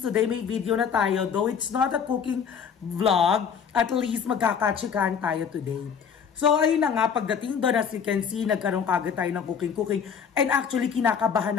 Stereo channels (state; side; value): quieter; right; 7.0 dB